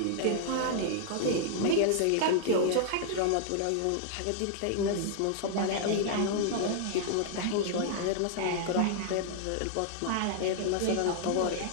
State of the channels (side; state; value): both; different; correlation -0.01